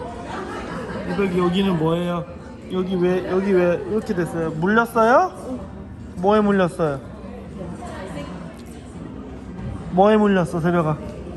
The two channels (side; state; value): both; identical; correlation 1.00